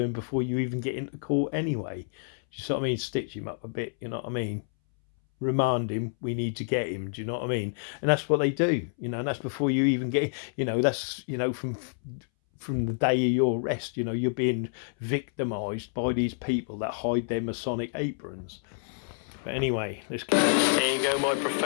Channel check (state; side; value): silent; right; 59 dB below the other